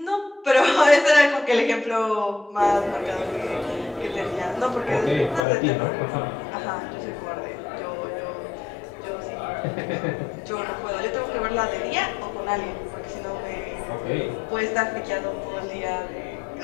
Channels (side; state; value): right; drops out; at 5.5 s